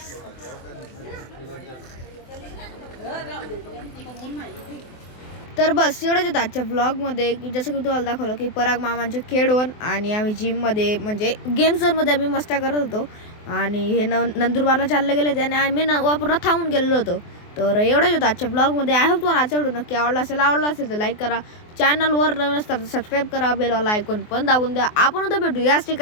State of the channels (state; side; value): late; right; 24 ms